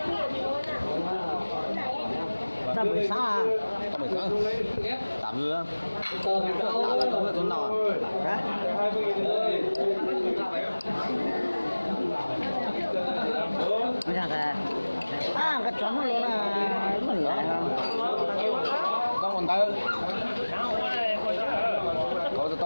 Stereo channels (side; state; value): both; inverted; correlation -1.00